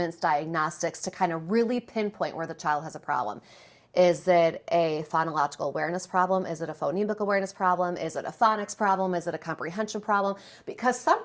diagnostics to kind of really pinpoint where the child has a problem. Is it a phonological awareness problem? Is it a phonemic awareness problem? Is it a phonics problem? Is it a comprehension problem? Because some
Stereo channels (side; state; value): both; identical; correlation 1.00